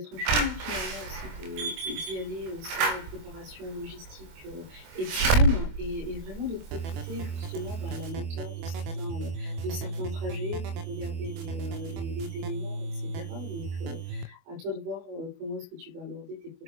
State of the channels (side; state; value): left; late; 24 ms